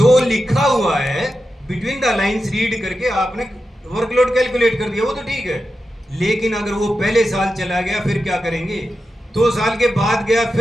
लिखा हुआ है, बिटवीन द लाइंस रीड करके आपने वर्कलोड कैलकुलेट कर दिया, वो तो ठीक है। लेकिन अगर वो पहले साल चला गया फिर क्या करेंगे, 2 साल के बाद गया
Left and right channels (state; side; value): normal; both; correlation 0.90